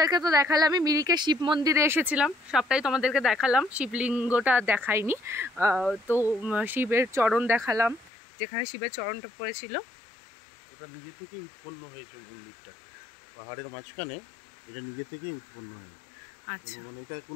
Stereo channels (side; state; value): right; drops out; at 8.1 s